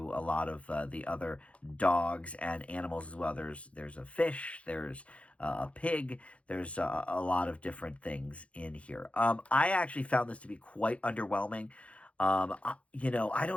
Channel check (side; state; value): right; late; 0.063 ms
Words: a lot of the other dogs and animals as well. There's a fish, there's a pig, there's a lot of different things in here. I actually found this to be quite underwhelming. I